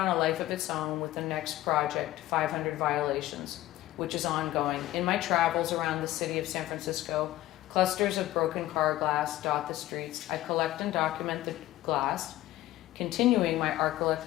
a life of its own with the next project, 500 Violations, which is ongoing. In my travels around the city of San Francisco, clusters of broken car glass dot the streets. I collect and document the glass, continuing my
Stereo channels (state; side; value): quieter; right; 15.4 dB